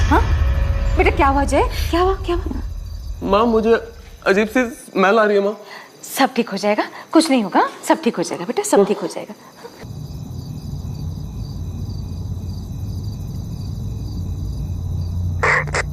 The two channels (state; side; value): identical; both; correlation 1.00